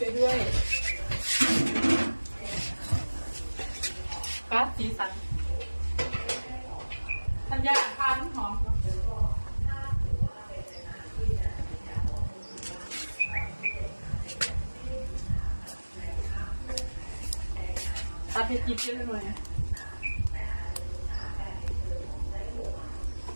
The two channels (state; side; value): inverted; both; correlation -1.00